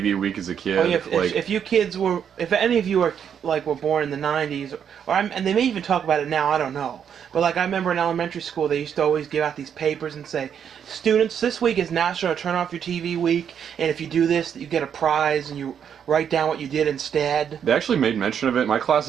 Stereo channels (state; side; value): quieter; left; 8.2 dB